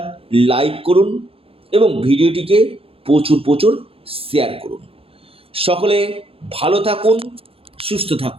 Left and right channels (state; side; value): late; left; 0.27 ms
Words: লাইক করুন এবং ভিডিওটিকে প্রচুর শেয়ার করুন। সকলে ভালো থাকুন, সুস্থ